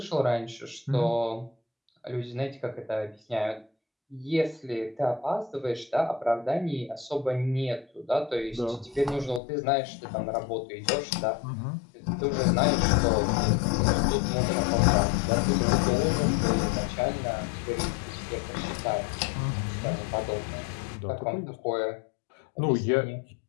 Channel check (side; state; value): right; drops out; at 9.4 s